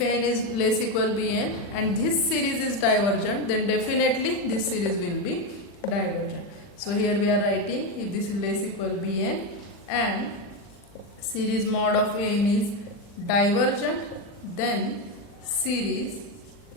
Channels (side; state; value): right; late; 40 ms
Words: An is less equal Bn and this series is divergent, then definitely this series will be divergent. So here we are writing, if this is less equal Bn and series mod of An is divergent, then series